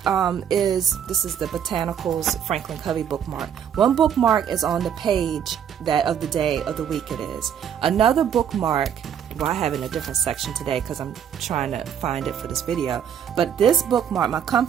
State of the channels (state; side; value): quieter; left; 8.6 dB